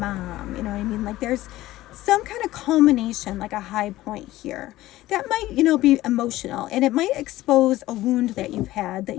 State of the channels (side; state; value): right; quieter; 16.2 dB